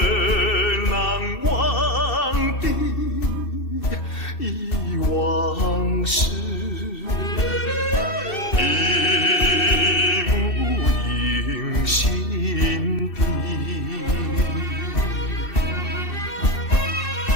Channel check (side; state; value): right; late; 2.6 ms